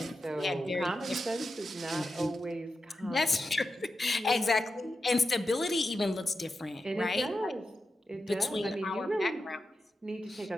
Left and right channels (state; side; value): normal; both; correlation 0.89